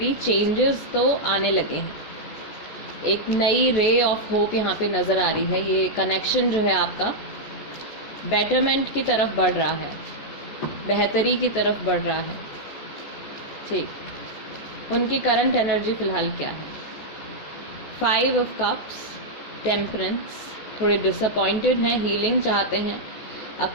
चेंजेस तो आने लगे हैं, एक नई रे ऑफ होप यहाँ पे नज़र आ रही है। ये कनेक्शन जो है आपका बेटरमेंट की तरफ बढ़ रहा है, बेहतरी की तरफ बढ़ रहा है। ठीक, उनकी करंट एनर्जी फ़िलहाल क्या है? 5 ऑफ कप्स, टेम्परेंस। थोड़े डिसअपॉइंटेड हैं, हीलिंग चाहते हैं,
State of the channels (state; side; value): late; right; 14 ms